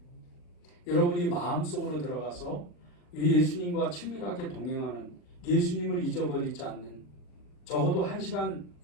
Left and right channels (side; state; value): right; late; 40 ms